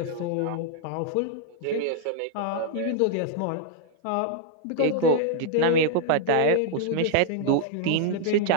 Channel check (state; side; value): different; both; correlation 0.00